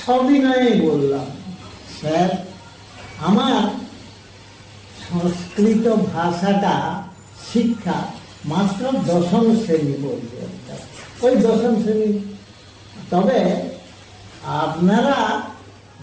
সবিনয়ে বললাম, স্যার আমার সংস্কৃত ভাষাটা শিক্ষা মাত্র দশম শ্রেণী পর্যন্ত, ওই দশম শ্রেণী। তবে আপনারা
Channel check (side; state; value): both; identical; correlation 1.00